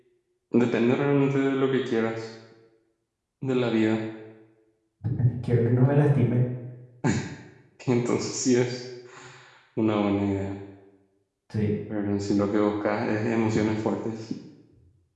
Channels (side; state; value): both; identical; correlation 1.00